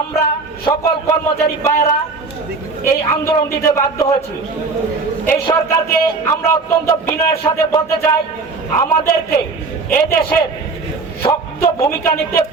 সকল কর্মচারী ভাইয়েরা এই আন্দোলন দিতে বাধ্য হয়েছি। এই সরকারকে আমরা অত্যন্ত বিনয়ের সাথে বলতে চাই, আমাদেরকে এদেশের শক্ত ভূমিকা নিতে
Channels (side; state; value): left; quieter; 4.0 dB